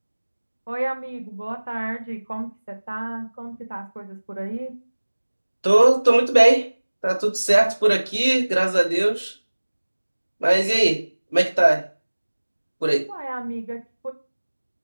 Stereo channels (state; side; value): inverted; both; correlation -1.00